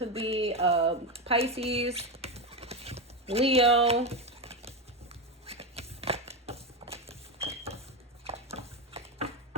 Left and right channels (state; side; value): normal; both; correlation 0.13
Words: be Pisces, Leo.